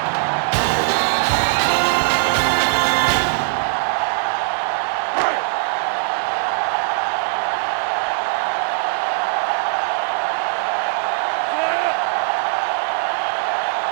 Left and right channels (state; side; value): silent; left; digital silence